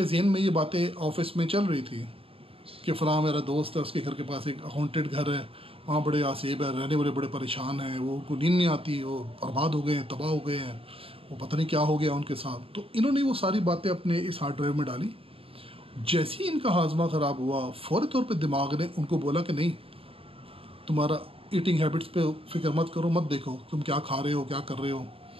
ज़हन में ये बातें ऑफिस में चल रही थी कि फ़लाँ मेरा दोस्त है, उसके घर के पास एक हॉन्टेड घर है, वहाँ बड़े आसेब है, रहने वाले बड़े परेशान हैं, वो उनको नींद नहीं आती, वो बर्बाद हो गए हैं, तबाह हो गए हैं, वो पता नहीं क्या हो गया उनके साथ। तो इन्होंने वो सारी बातें अपने इस हार्ड ड्राइव में डाली। जैसे ही इनका हाजमा ख़राब हुआ, फौरी तौर पे दिमाग ने उनको बोला कि नहीं, तुम्हारा ईटिंग हैबिट्स पे फ़िक्र मत करो, मत देखो तुम क्या खा रहे हो, क्या कर रहे हो,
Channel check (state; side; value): late; left; 0.27 ms